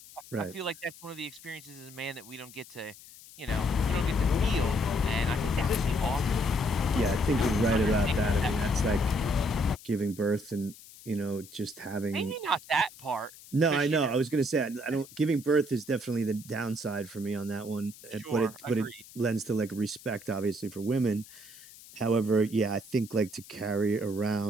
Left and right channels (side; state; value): left; noise; hiss, 19 dB below the sound